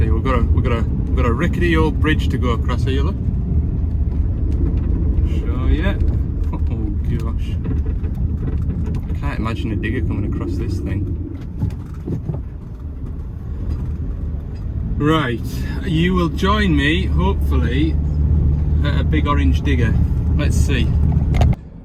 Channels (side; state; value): both; identical; correlation 1.00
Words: We've got a rickety old bridge to go across here, look. Show ya. Oh gosh. I can't imagine a digger coming across this thing. Right, you will join me, hopefully, at a big orange digger. Let's see.